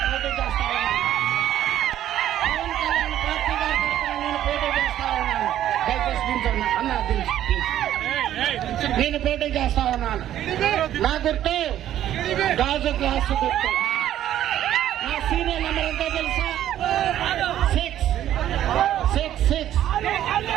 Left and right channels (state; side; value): quieter; left; 11.9 dB